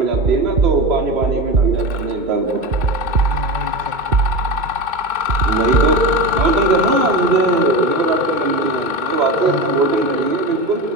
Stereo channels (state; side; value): late; left; 2.2 ms